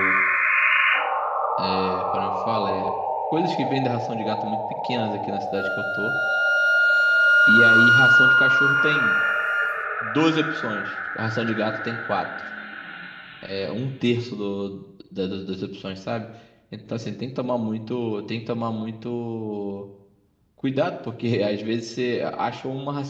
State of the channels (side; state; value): both; identical; correlation 1.00